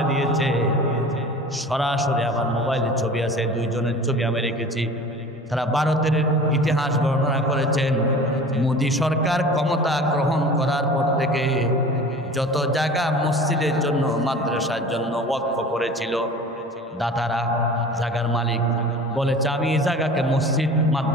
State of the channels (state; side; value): normal; both; correlation 0.40